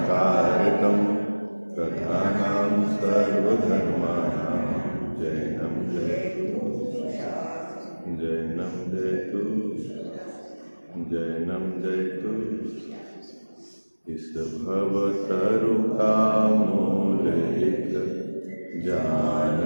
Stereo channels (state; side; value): inverted; both; correlation -1.00